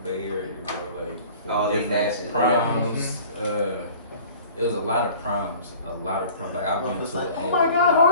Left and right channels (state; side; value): inverted; both; correlation -0.47